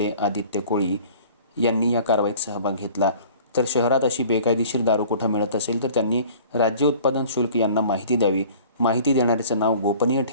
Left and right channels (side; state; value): both; inverted; correlation -0.48